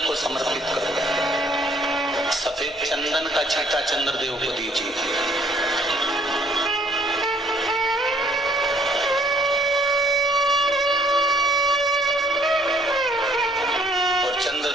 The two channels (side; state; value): both; normal; correlation 0.61